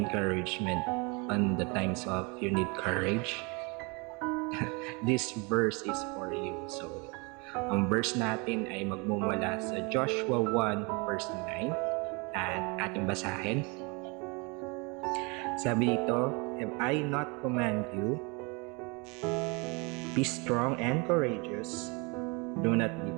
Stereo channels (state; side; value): quieter; left; 29.9 dB